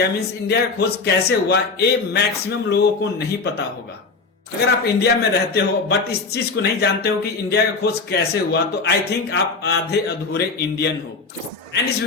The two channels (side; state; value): right; quieter; 4.2 dB